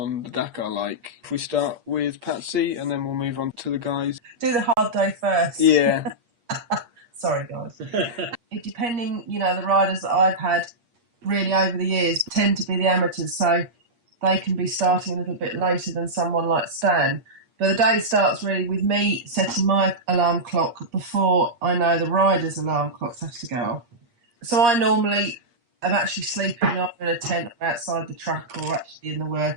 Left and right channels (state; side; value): late; left; 8.5 ms